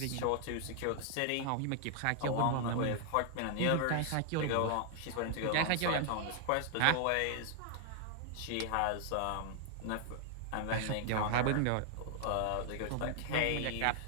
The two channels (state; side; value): different; both; correlation 0.00